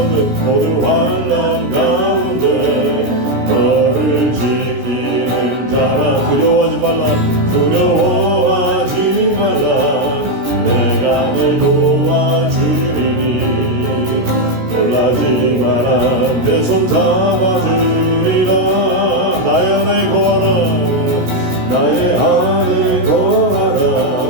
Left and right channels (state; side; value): late; left; 17 ms